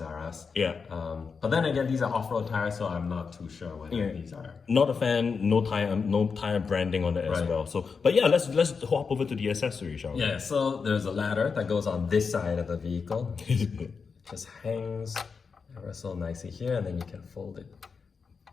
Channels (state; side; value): quieter; right; 5.4 dB